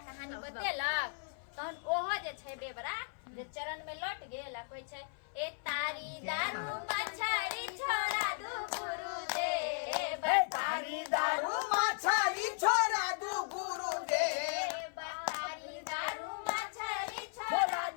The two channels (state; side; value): silent; right; 54 dB below the other